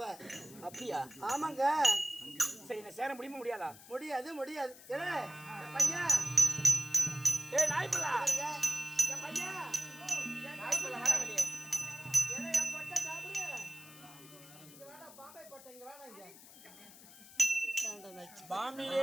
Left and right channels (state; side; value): noise; left; hiss, 19 dB below the sound